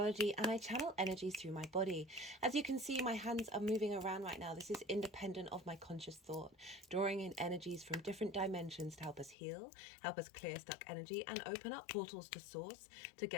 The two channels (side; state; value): right; drops out; at 9.3 s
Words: and I channel energies through my body. As you can see, my hands are moving around right now. This is independent of my conscious thought, drawing in energies from different dimensions to help us heal, help us clear stuck energy, and open up portals to source to